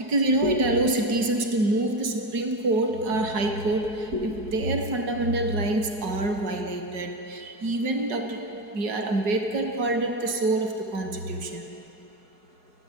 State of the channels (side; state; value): left; late; 4.7 ms